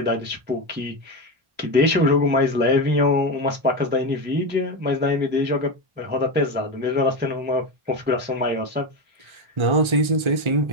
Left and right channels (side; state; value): left; late; 1.3 ms